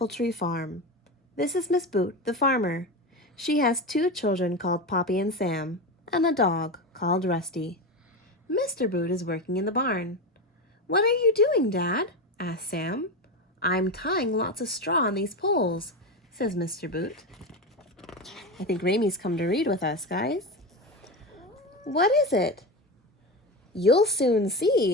Tree Farm. This is Miss Boot, the farmer. She has two children called Poppy and Sam, and a dog called Rusty. Mr. Boot is working in the barn. "What are you doing, Dad?" asked Sam. "I'm tying lots of straw on these poles," says Mr. Boot. I think Ramie's come to read with us, guys. "What is it?" "You'll soon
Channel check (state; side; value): normal; both; correlation 0.19